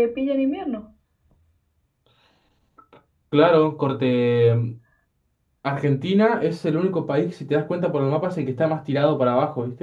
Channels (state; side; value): identical; both; correlation 1.00